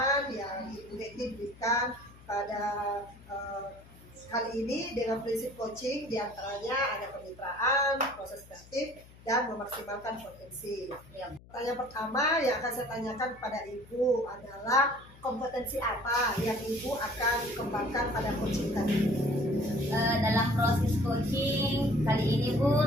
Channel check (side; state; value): left; noise; hum, 22 dB below the sound